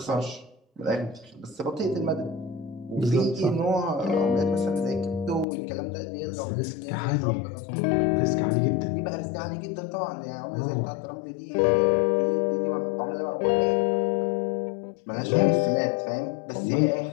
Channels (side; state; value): right; drops out; at 5.5 s